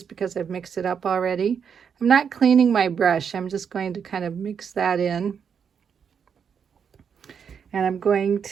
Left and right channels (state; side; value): quieter; left; 7.1 dB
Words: because I've mixed it up already. I'm not cleaning my brush. I'm just going to kind of mix that in. And I'm going